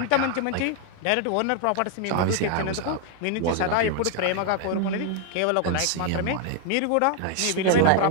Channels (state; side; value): different; both; correlation 0.00